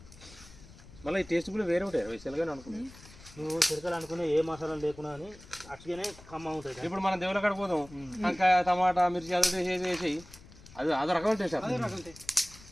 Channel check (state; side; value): noise; left; rumble, 20 dB below the sound